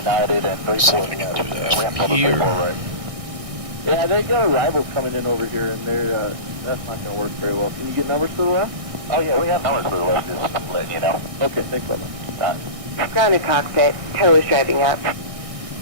and 3 See if I can do that from here. Right. Yeah, they got arrivals coming in over here, and they're that's not going to work very well. Can you get numbers to the left? Oh yeah, we have numbers for the left, just to let you know. Okay, thanks, brother. Grounded cockpit, tow is driving up.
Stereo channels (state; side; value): late; left; 1.6 ms